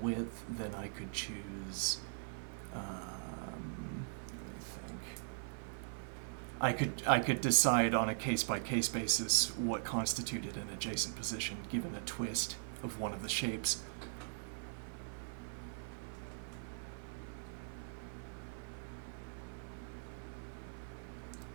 then I could choose, let me think. I could decide on a case-by-case basis what constituted an adjacent position given a twist of one of the shapes.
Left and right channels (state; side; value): silent; left; 51 dB below the other